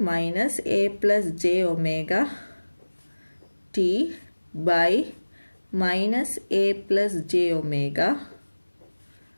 minus a plus j omega t by minus a plus j omega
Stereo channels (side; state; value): both; inverted; correlation -1.00